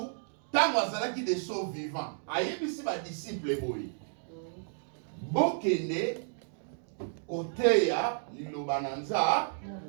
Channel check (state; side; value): silent; left; digital silence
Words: tant azalaki des sauts vivants. Ayebisi ba disciple boy. Bokene koteya liloba nanza.